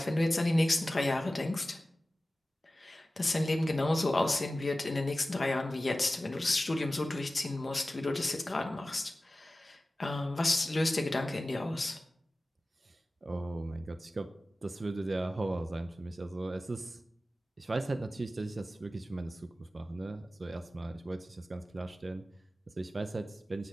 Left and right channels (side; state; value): both; normal; correlation 0.96